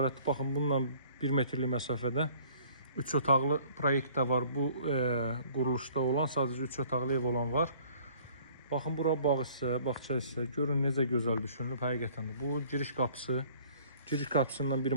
Baxın, bununla 1 metrlik məsafədə 3 otaqlı proyekt də var. Bu quruluşda olan, sadəcə 3 otaqlı ev olan var. Baxın, bura bağ hissə, bağça hissə. Görün necə gözəl düşünülüb həqiqətən də. Bu giriş qapısı. Giriş qapısından bir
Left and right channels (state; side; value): inverted; both; correlation -0.54